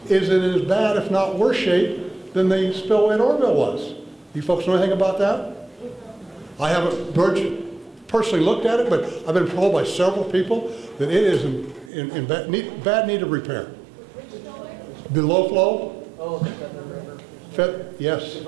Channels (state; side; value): drops out; left; at 11.9 s